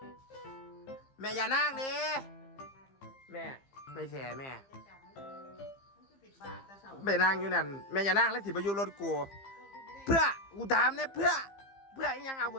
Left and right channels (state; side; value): late; right; 15 ms